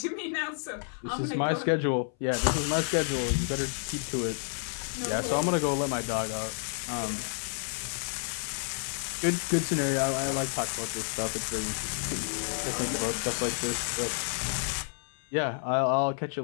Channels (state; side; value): silent; right; 58 dB below the other